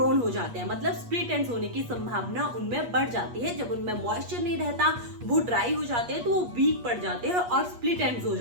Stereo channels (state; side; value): late; left; 8.4 ms